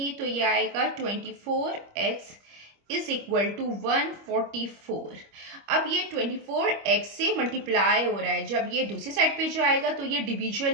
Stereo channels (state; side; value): late; left; 25 ms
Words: तो ये आएगा 24x इज इक्वल टू 144। अब ये 24x से मल्टीप्लाई हो रहा है। जब ये दूसरी साइड पे जाएगा तो ये